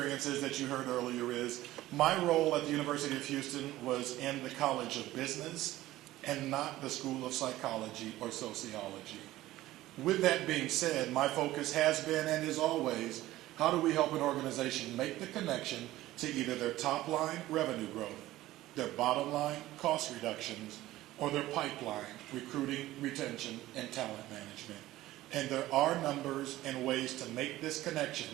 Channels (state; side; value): quieter; left; 16.0 dB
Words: that you heard earlier is my role at the University of Houston was in the College of Business and not the School of Psychology or Sociology. With that being said, my focus has been and is always how do we help an organization make the connection to either their top line revenue growth, their bottom line cost reductions, or their pipeline recruiting, retention, and talent management. And there are numbers and ways to make this